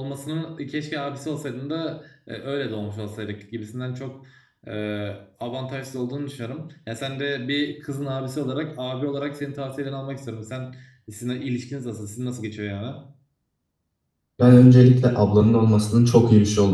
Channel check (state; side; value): identical; both; correlation 1.00